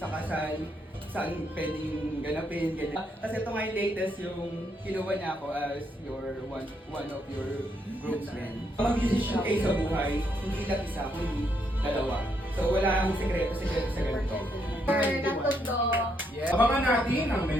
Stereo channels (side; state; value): both; normal; correlation 0.76